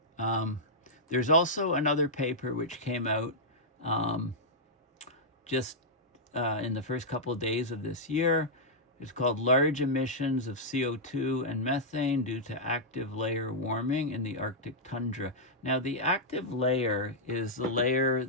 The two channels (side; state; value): both; normal; correlation -0.08